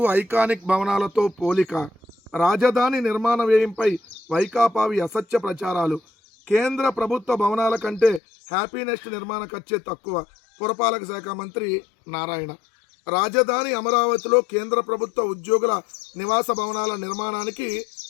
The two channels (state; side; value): drops out; right; at 8.2 s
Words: ఐకానిక్ భవనాలతో పోలిక, రాజధాని నిర్మాణ వ్యయంపై వైకాపావి అసత్య ప్రచారాలు, కేంద్ర ప్రభుత్వ భవనాల కంటే హ్యాపీనెస్ట్ నిర్మాణ ఖర్చే తక్కువ, పురపాలక శాఖ మంత్రి నారాయణ. రాజధాని అమరావతిలో కేంద్ర ప్రభుత్వ ఉద్యోగుల నివాస భవనాల నిర్మాణానికి